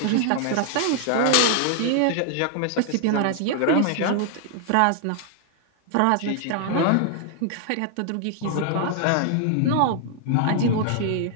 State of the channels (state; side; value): different; both; correlation 0.00